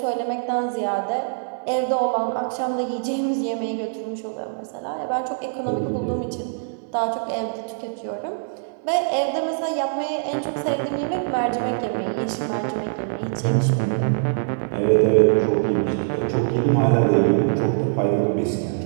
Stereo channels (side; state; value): left; silent; 63 dB below the other